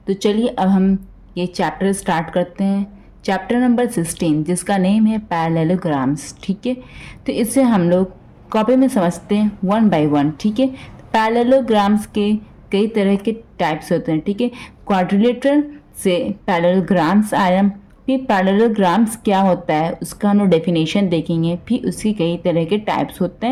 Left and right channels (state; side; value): identical; both; correlation 1.00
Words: तो चलिए अब हम ये चैप्टर स्टार्ट करते हैं। चैप्टर नंबर 16 जिसका नेम है पैरेललोग्राम्स। ठीक है, तो इसे हम लोग कॉपी में समझते हैं वन बाय वन। ठीक है, पैरेललोग्राम्स के कई तरह के टाइप्स होते हैं। ठीक है, क्वाड्रिलेटरल से पैरेललोग्राम्स आया। फिर पैरेललोग्राम्स क्या होता है उसका हम लोग डेफिनेशन देखेंगे। फिर उसके कई तरह के टाइप्स होते